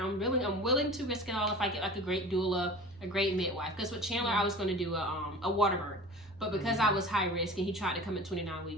I'm willing to risk it all if I get like a great doula, a great midwife. Because with Chandler, I was going to do a water birth. But because I was high risk and he tried to come at 29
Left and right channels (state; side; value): noise; left; hum, 29 dB below the sound